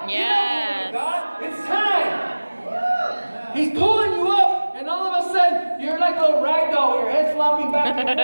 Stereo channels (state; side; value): inverted; both; correlation -1.00